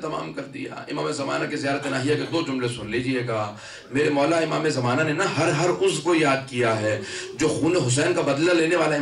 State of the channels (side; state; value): both; identical; correlation 1.00